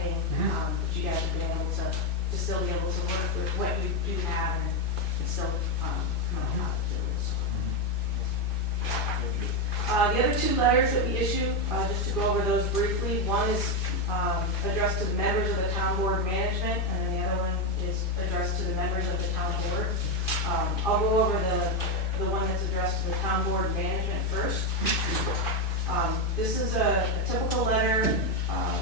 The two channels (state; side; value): late; right; 2.5 ms